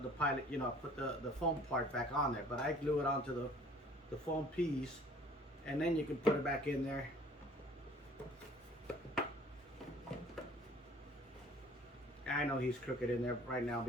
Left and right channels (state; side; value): normal; both; correlation 0.52